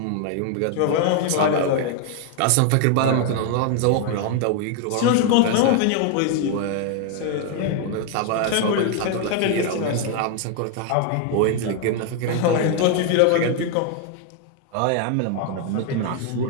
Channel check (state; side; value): different; both; correlation 0.00